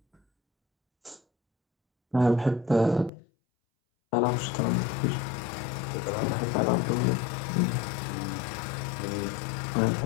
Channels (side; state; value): right; drops out; at 3.1 s